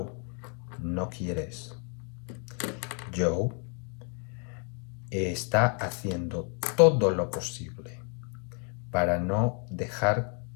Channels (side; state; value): right; quieter; 39.8 dB